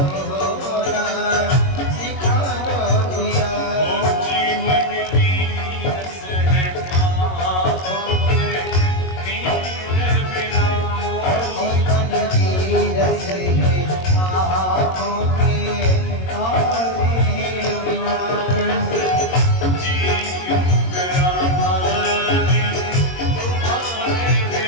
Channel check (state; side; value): late; right; 22 ms